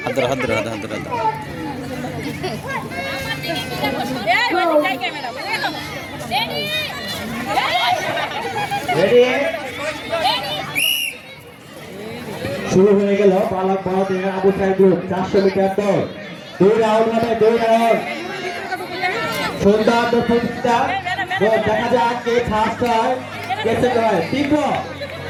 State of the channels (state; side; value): identical; both; correlation 1.00